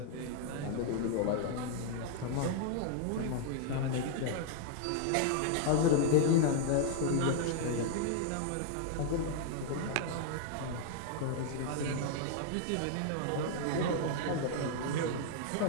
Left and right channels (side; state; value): both; different; correlation 0.00